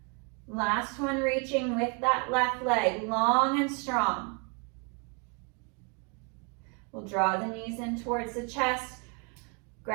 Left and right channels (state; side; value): quieter; left; 35.1 dB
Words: Last one, reaching with that left leg, long and strong. We'll draw the knees in towards the chest,